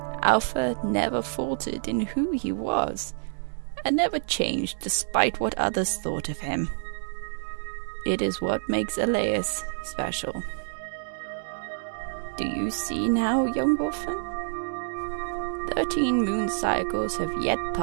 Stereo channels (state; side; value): silent; left; digital silence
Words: Alpha never faltered in who he was, and never changed despite what others thought of him. It is what makes Elias special. Do you see now, young Wolfen? 13 moon cycles have yet